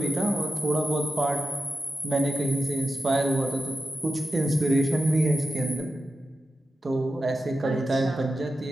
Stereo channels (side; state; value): both; normal; correlation 0.92